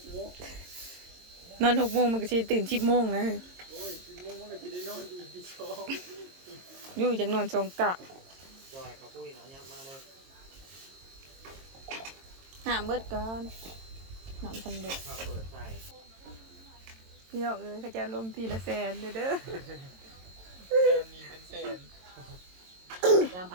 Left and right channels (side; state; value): left; late; 22 ms